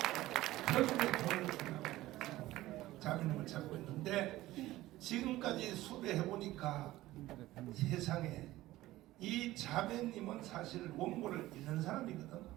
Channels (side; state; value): left; quieter; 16.6 dB